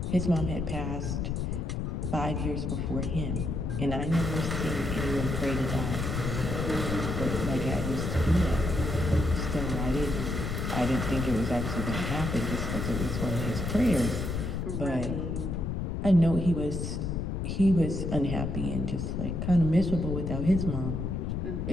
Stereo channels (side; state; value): left; noise; rumble, 2 dB below the sound